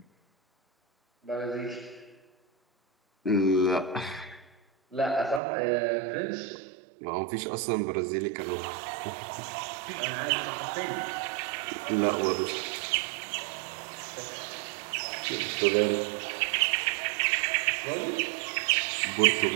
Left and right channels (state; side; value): drops out; left; at 5.4 s